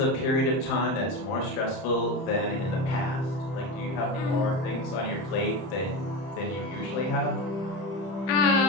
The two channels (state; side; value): late; right; 31 ms